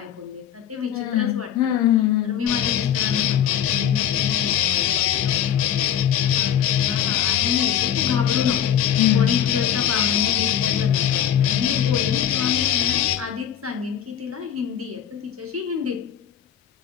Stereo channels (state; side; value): quieter; right; 9.7 dB